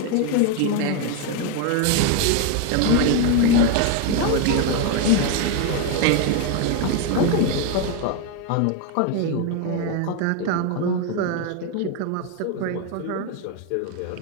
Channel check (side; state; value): both; different; correlation 0.01